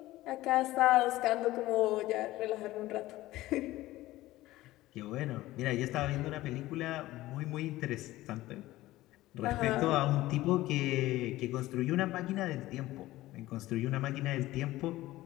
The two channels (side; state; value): right; quieter; 16.9 dB